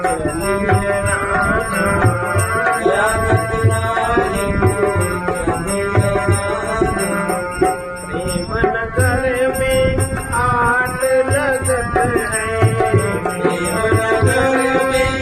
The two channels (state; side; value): identical; both; correlation 1.00